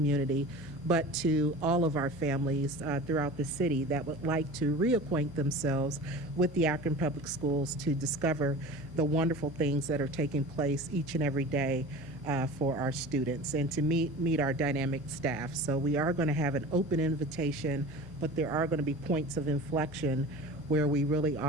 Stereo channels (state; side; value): normal; both; correlation 0.36